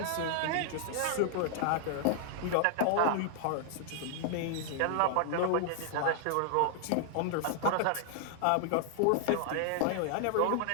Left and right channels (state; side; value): different; both; correlation 0.00